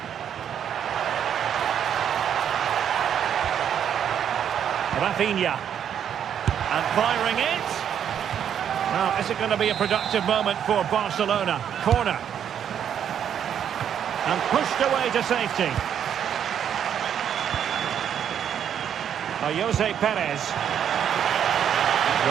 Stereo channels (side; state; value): left; quieter; 8.9 dB